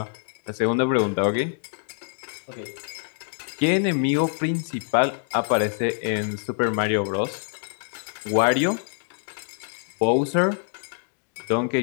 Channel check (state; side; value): silent; right; 61 dB below the other